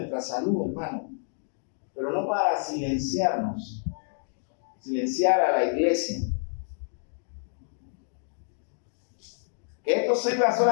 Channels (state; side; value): silent; right; digital silence